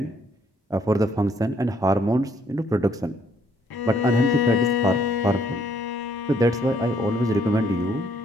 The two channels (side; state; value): both; normal; correlation 0.67